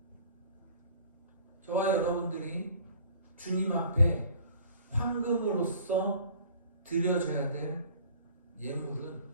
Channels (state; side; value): inverted; both; correlation -0.51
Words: 저와 여러분들이 주님 앞에 황금으로서 드려져야 될 예물은